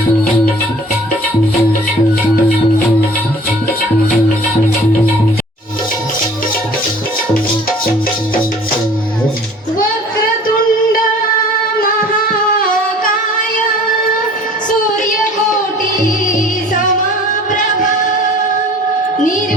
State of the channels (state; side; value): normal; both; correlation 0.49